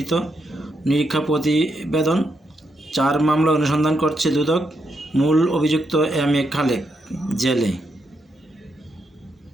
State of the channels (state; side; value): normal; both; correlation 0.80